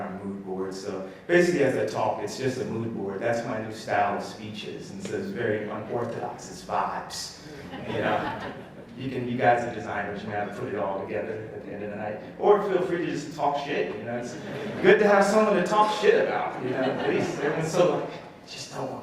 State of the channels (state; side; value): identical; both; correlation 1.00